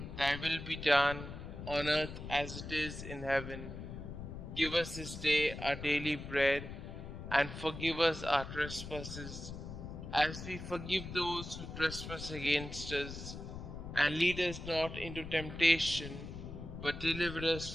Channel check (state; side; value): noise; left; rumble, 9 dB below the sound